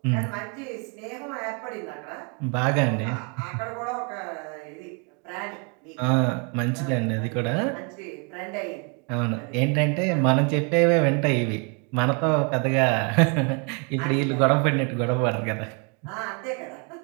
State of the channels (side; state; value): left; quieter; 35.7 dB